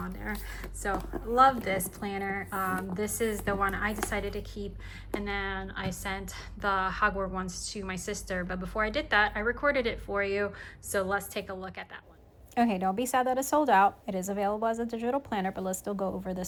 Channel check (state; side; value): identical; both; correlation 1.00